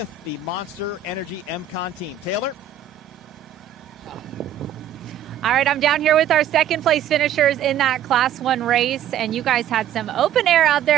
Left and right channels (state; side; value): quieter; left; 9.4 dB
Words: the Monster Energy MCon team. Taylor. All right, I'm down here with our second place finishers in that Class 1 race, and you guys had some open air out